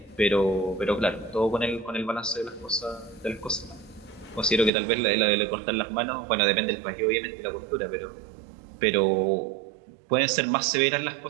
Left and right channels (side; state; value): left; drops out; at 4.7 s